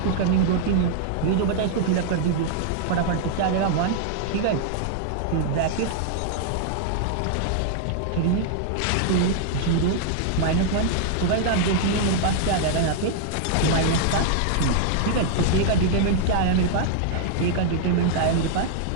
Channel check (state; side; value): different; both; correlation -0.01